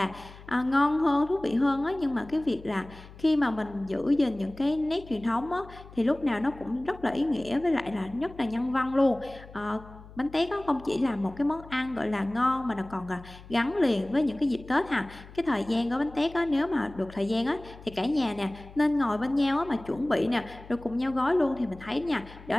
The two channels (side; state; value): left; noise; hum, 19 dB below the sound